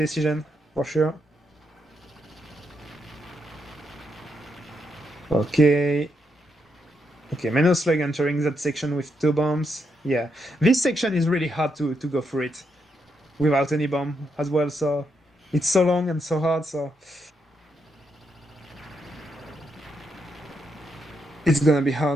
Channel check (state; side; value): normal; both; correlation 0.80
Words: for sure. Okay. Okay, Menoslug entering that section with 2 bombs. Yeah, this section is really hard to go through it without any bomb as well, so it's so long and so hard, so it's gonna be